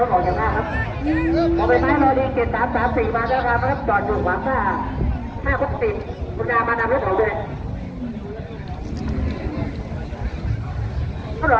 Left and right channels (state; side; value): identical; both; correlation 1.00